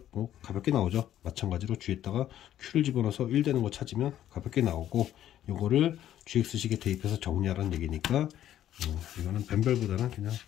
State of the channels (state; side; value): quieter; right; 11.7 dB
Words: 뭐 가볍게 나오죠. 마찬가지로 G에다가 Q를 집어넣어서 1 되는 거 찾으면 가볍게 나오고, 요거를 GX식에 대입해서 정리하라는 얘기니까 이거는 뱀별보다는 그냥